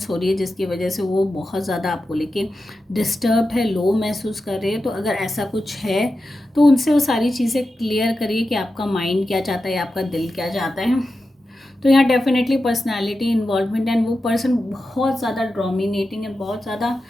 हो रही है जिसकी वजह से वो बहुत ज़्यादा आपको लेके डिस्टर्ब है, लो महसूस कर रहे हैं। तो अगर ऐसा कुछ है तो उनसे वो सारी चीज़ें क्लियर करिए कि आपका माइंड क्या चाहता है, आपका दिल क्या चाहता है। तो यहाँ डेफिनेटली पर्सनालिटी इन्वॉल्वमेंट एंड वो पर्सन बहुत ज़्यादा डोमिनेटिंग एंड बहुत ज़्यादा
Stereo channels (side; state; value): both; normal; correlation 0.91